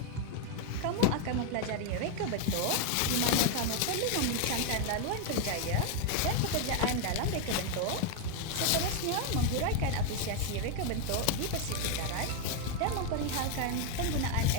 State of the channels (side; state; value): both; different; correlation 0.01